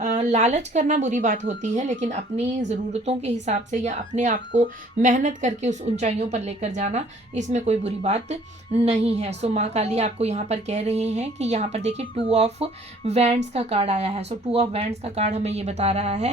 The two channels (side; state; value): both; normal; correlation 0.56